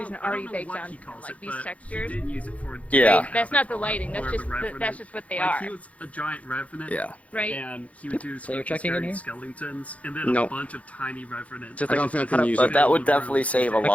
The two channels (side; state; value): right; late; 0.066 ms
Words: already baked on, like these textures. Yeah. Right? That's not the lighting. That's just what they are. He was a giant revenant. Yeah. Right. And he would do So you're checking in here? skeletons, and then No. a bunch of tiny revenants. Just I don't think I can use But it. that would definitely save a